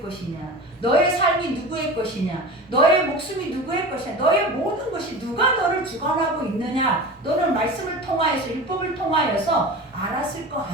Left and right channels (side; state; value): both; normal; correlation 0.32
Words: 것이냐, 너의 삶이 누구의 것이냐, 너의 목숨이 누구의 것이냐, 너의 모든 것이 누가 너를 주관하고 있느냐, 너는 말씀을 통하여서 율법을 통하여서 알았을 거